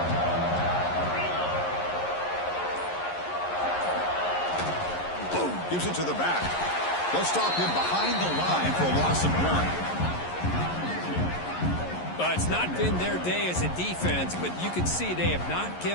Gives it to the back. They'll stop him behind the line for a loss of 1. Well, it's not been their day as a defense, but you can see they have not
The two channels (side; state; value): right; late; 11 ms